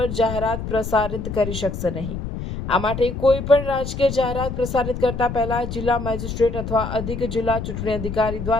જાહેરાત પ્રસારિત કરી શકશે નહીં। આ માટે કોઈ પણ રાજકીય જાહેરાત પ્રસારિત કરતા પહેલા જિલ્લા મેજિસ્ટ્રેટ અથવા અધિક જિલ્લા ચૂંટણી અધિકારી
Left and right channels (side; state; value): left; noise; rumble, 6 dB below the sound